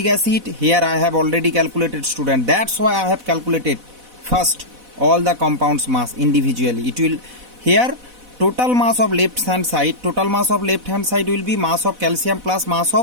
acid. Here I have already calculated, student. That's why I have calculated first all the compounds mass individually. It will here total mass of left hand side. Total mass of left hand side will be mass of calcium plus mass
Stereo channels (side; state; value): left; late; 4.1 ms